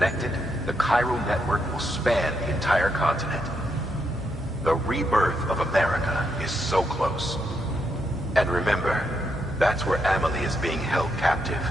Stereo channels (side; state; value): both; normal; correlation 0.79